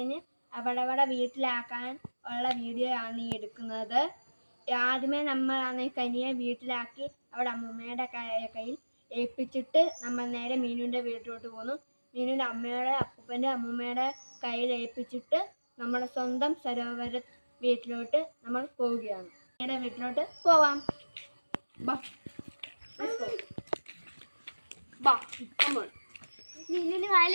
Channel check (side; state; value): both; inverted; correlation -1.00